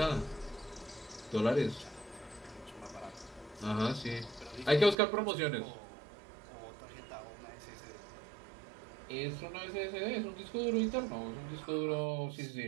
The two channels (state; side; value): drops out; left; at 5.0 s